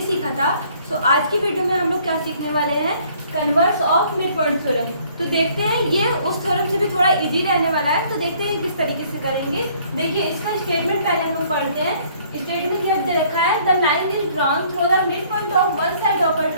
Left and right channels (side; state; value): both; inverted; correlation -0.60